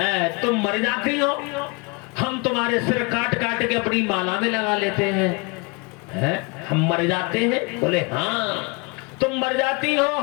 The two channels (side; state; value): right; quieter; 29.5 dB